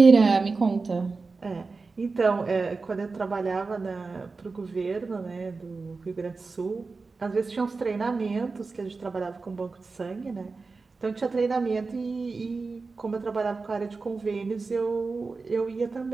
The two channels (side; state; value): left; quieter; 4.1 dB